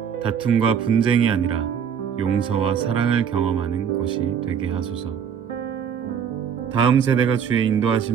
다툼과 분쟁이 아니라 용서와 사랑을 경험하는 곳이 되게 하소서. 다음 세대가 주의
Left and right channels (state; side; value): quieter; left; 7.8 dB